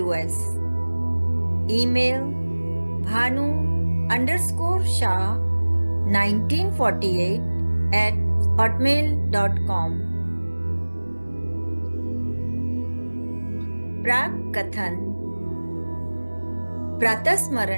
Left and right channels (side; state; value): both; inverted; correlation -1.00